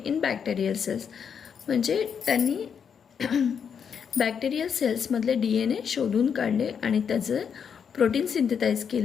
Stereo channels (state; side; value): quieter; right; 7.1 dB